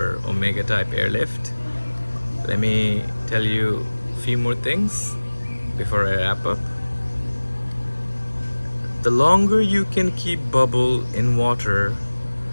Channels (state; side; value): inverted; both; correlation -1.00